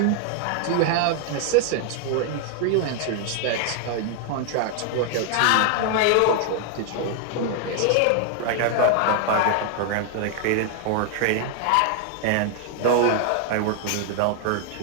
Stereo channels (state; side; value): different; both; correlation 0.00